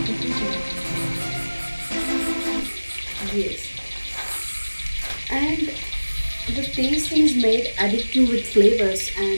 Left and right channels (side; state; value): both; inverted; correlation -1.00